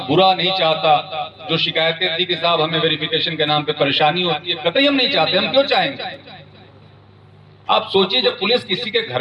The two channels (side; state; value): both; identical; correlation 1.00